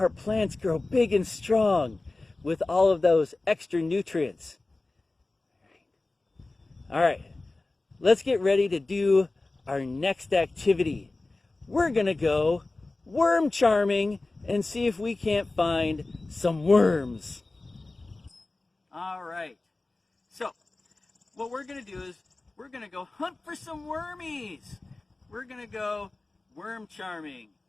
plants grow big and strong with all of those extra nutrients. All right, let's get ready to do our next activity. We're gonna go worm charming and see if we can't find some worms. All right, so what we're gonna do is we're gonna go hunt for some wormies. We're gonna go worm charming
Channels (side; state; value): right; quieter; 3.1 dB